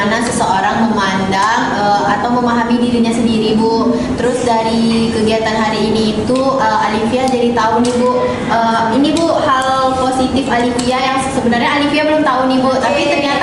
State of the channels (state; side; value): identical; both; correlation 1.00